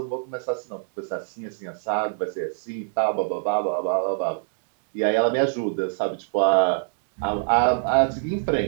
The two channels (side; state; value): left; silent; digital silence